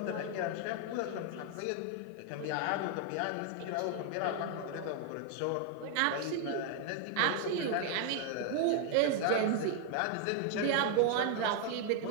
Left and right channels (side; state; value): both; different; correlation 0.00